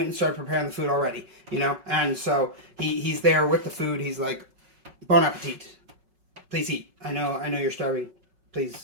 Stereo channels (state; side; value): late; left; 5.4 ms